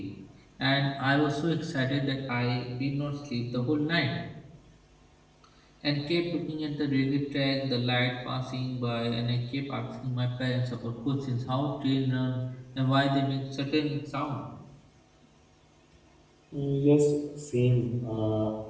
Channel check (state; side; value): identical; both; correlation 1.00